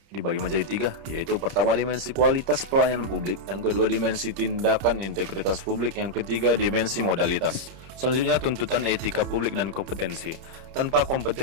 dibagi menjadi 3, yaitu pertama, dimensi kualitas pelayanan publik, yang kedua, dimensi tindakan integritas publik, yang ketiga, dimensi modalitas. Selanjutnya, tuntutan etika publik dan kompetensi. Tanpa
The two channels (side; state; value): left; late; 30 ms